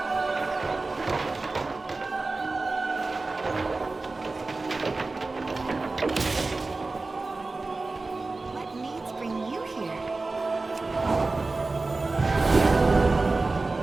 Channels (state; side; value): quieter; left; 3.5 dB